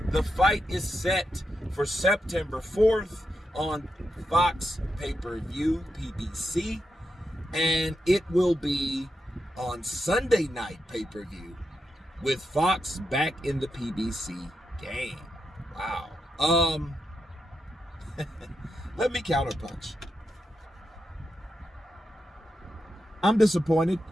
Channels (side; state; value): both; normal; correlation 0.86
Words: The fight is set for September 4th on Fox pay-per-view, PBC, and it will be on Sunday night pay-per-view with Fox back in the PBC game. Wow. Let me counterpunch. I'm disappointed.